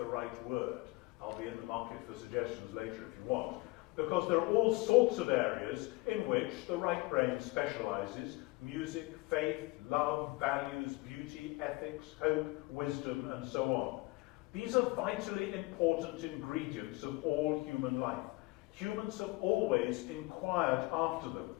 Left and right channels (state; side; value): quieter; right; 23.0 dB